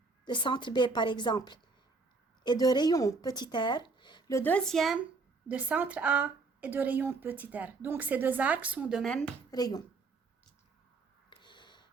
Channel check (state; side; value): quieter; left; 4.0 dB